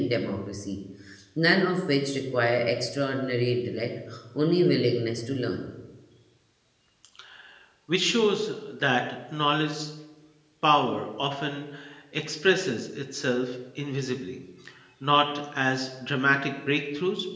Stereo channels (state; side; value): identical; both; correlation 1.00